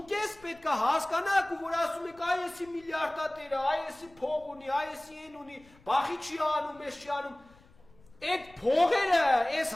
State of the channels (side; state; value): left; noise; rumble, 27 dB below the sound